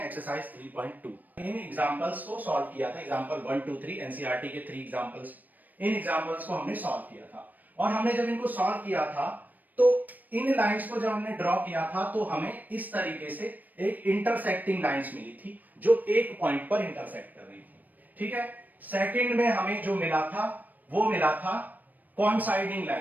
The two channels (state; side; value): late; left; 0.084 ms